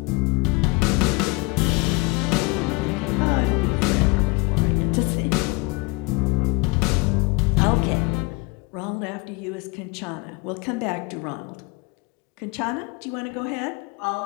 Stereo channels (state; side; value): quieter; right; 26.5 dB